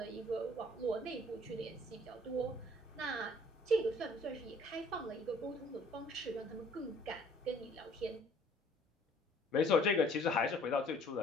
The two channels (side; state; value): both; normal; correlation 0.57